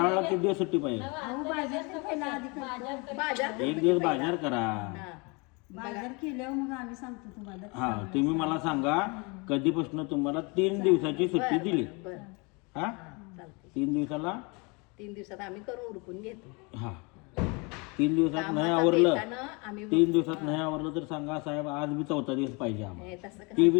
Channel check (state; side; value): quieter; right; 29.6 dB